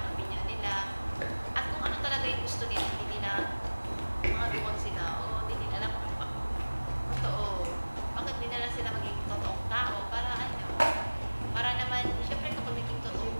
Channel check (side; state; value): both; inverted; correlation -1.00